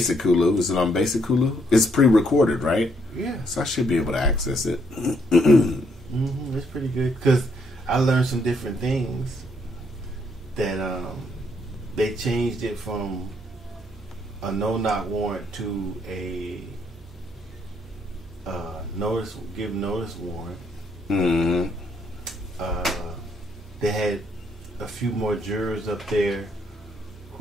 Hulu. Is it on Basic Hulu? It's pre-recorded, right? Yeah. So I should be able to access it. It's pretty good because I learned some different things that they changed it from a no-knock warrant to a give notice warrant. They had a few more jurors up there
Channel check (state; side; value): normal; both; correlation 0.72